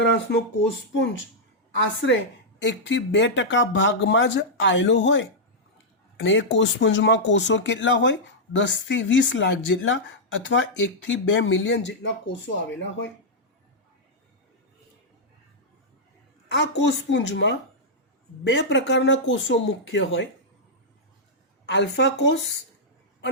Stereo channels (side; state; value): both; normal; correlation -0.07